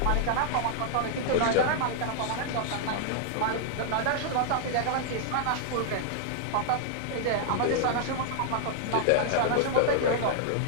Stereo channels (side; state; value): both; different; correlation 0.00